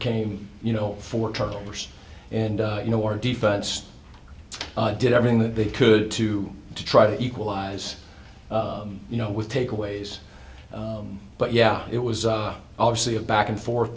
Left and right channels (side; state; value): both; identical; correlation 1.00